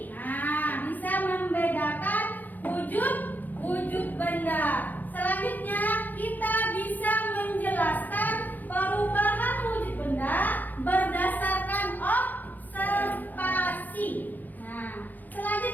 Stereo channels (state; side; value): late; right; 0.084 ms